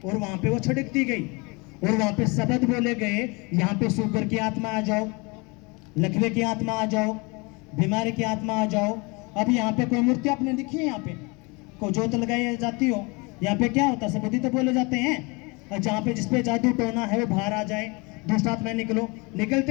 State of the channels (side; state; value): right; quieter; 28.1 dB